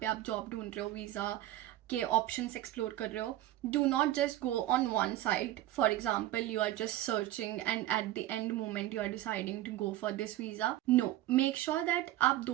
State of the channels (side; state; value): left; quieter; 14.5 dB